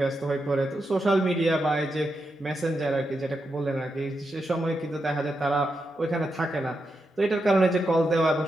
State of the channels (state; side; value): normal; both; correlation 0.86